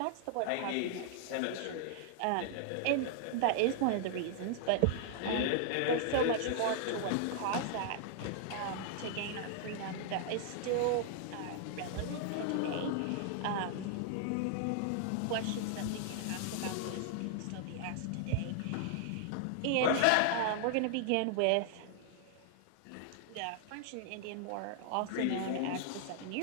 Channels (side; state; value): both; different; correlation -0.01